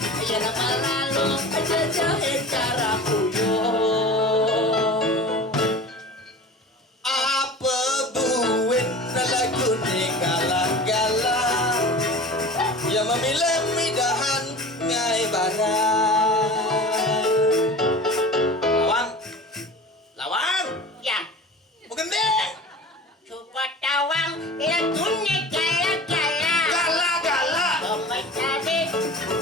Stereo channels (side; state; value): both; normal; correlation 0.37